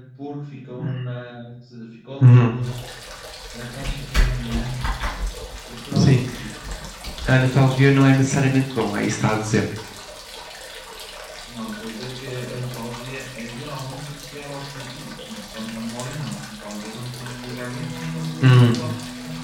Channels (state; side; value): identical; both; correlation 1.00